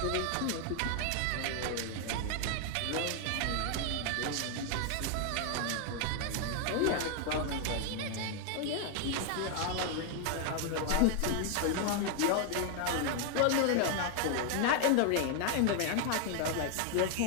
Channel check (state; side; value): different; both; correlation 0.00